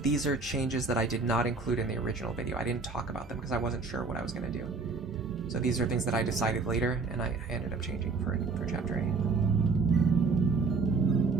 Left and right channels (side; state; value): left; quieter; 4.3 dB